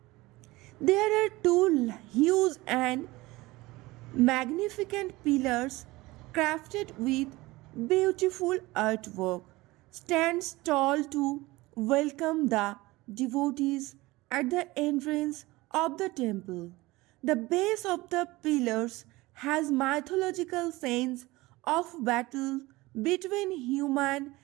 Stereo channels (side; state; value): left; quieter; 20.4 dB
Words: There are two huge and magnificent pillars crafted with beautiful artwork stands tall to welcome the devotees at the entrance of the temple. The base of the pillars has mythological scenes of battle between human,